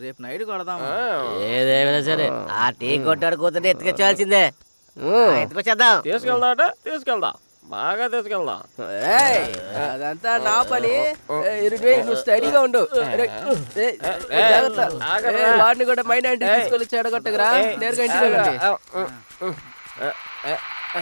రేపు నైట్ కొడదాము. ఏదేమైనా సరే ఆ టీ కొట్టాడు కూతుంటే ఎత్తుకొచ్చాల్సిందే. ఎత్తుకొచ్చేద్దాం. తీసుకెళ్దా? తీసుకెళ్దాం, బాగా తీసుకెళ్దాం. అదంతా నా పని. నువ్వు స్టడీగా ఉండు. జాగ్రత్త. వాడిని కూడా మైండ్ అంటే తీసుకొని చెడగొట్టగరా. నేరుగా ఇంటికి వెళ్ళండి.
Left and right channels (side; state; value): both; inverted; correlation -1.00